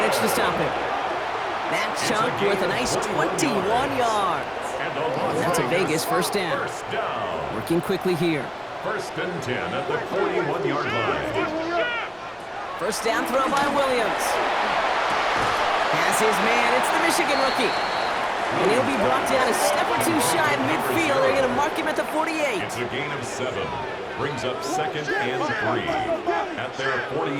to stop him. That chunk worth a nice 21 yards. And that's a Vegas 1st down. Working quickly here. 1st and 10 at the 41-yard line. 1st down throw by Williams. Has his man. It's the Michigan rookie. And he'll be brought down a step or two shy of midfield. They're going to mark him at the 48. It's a gain of 7. Brings up 2nd and 3 at their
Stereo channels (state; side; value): identical; both; correlation 1.00